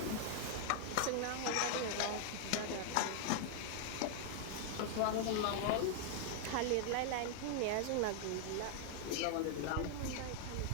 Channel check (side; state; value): both; different; correlation 0.00